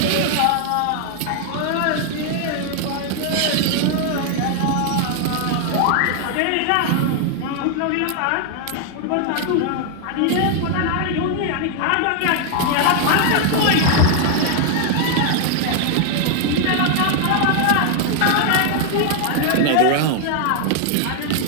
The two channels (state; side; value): different; both; correlation 0.00